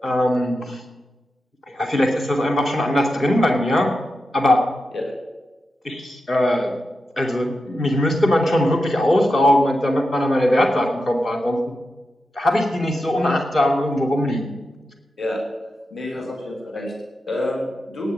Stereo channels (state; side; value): normal; both; correlation 0.89